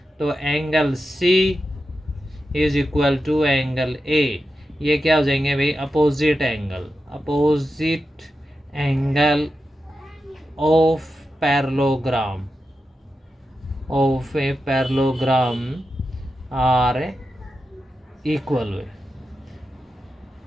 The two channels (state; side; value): normal; both; correlation 0.90